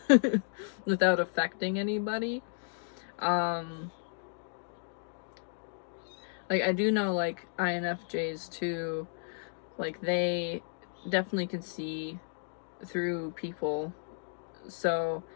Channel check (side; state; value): right; silent; digital silence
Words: without affecting anybody. Like I do know like INFJs too, like they definitely can see through people, so